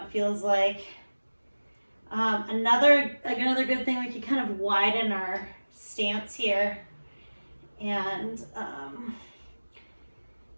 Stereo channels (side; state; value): both; inverted; correlation -1.00